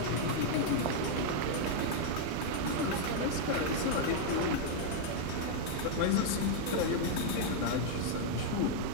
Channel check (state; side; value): different; both; correlation 0.00